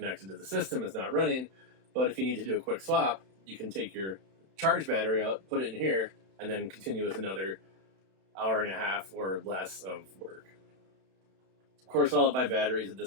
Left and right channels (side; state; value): left; late; 31 ms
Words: to the system, it's not running, but if you need to do a quick swap, you can take your charged battery out, put it in here, and then continue with another hour and a half or less of work. Of course, all of my batteries at